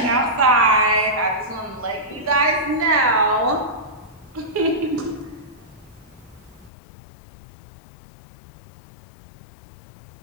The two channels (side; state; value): right; drops out; at 6.7 s